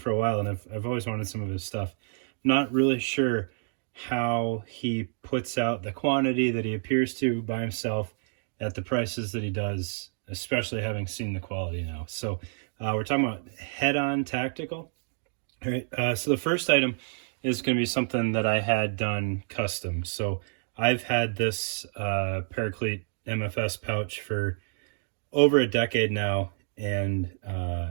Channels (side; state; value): left; silent; digital silence